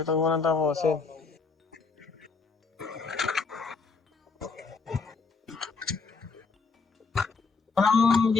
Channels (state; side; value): quieter; right; 4.7 dB